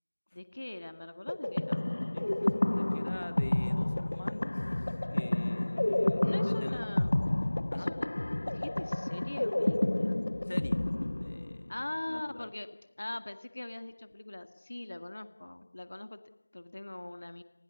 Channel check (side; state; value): both; inverted; correlation -1.00